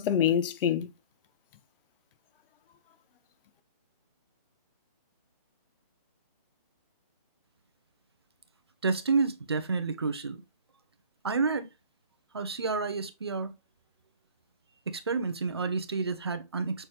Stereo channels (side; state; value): both; inverted; correlation -0.49